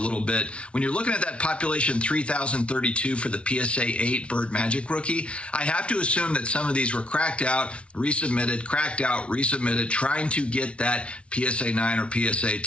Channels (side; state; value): right; late; 0.060 ms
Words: bit. When you're looking at that population 3,032 for the PSA 8 Bird Magic rookie, I have to assume that some of these were cracked out, resubmitted, cracked out, resubmitted, trying to get that PSA 9 or PSA